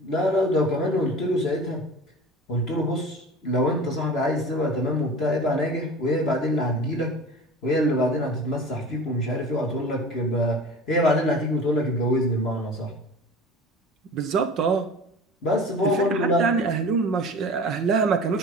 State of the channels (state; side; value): normal; both; correlation 0.38